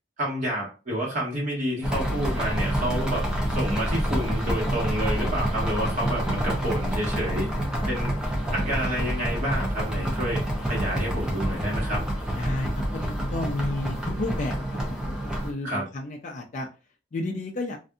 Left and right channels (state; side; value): normal; both; correlation 0.70